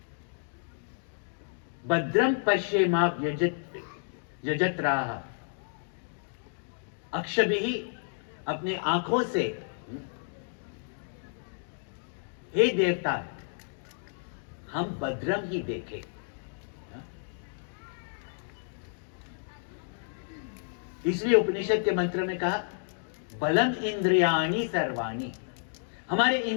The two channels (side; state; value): right; silent; digital silence